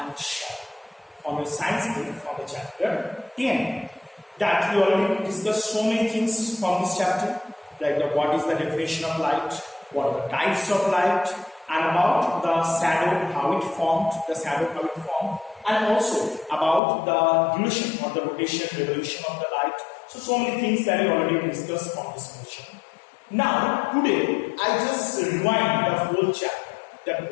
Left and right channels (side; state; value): right; drops out; at 16.8 s